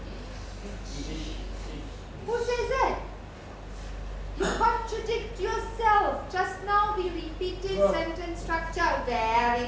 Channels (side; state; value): both; identical; correlation 1.00